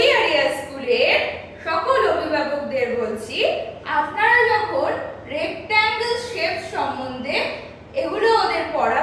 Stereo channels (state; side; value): identical; both; correlation 1.00